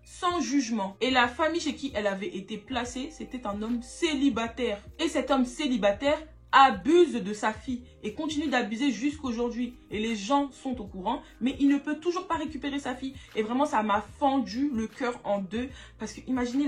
sans jugement. Et la famille chez qui elle avait été placée, c'était un homme célibataire. Et cet homme célibataire abuse de sa fille et continue d'abuser jusqu'aujourd'hui. Et les gens sont au courant, mais il ne peut toujours pas récupérer sa fille. Et vraiment, ça m'a fendu le cœur en deux. Parce que imaginez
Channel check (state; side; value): identical; both; correlation 1.00